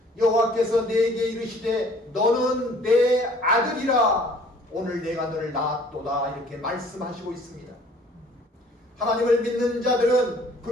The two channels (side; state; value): both; normal; correlation 0.54